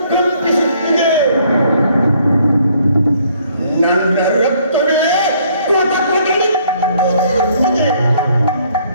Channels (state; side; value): inverted; both; correlation -0.64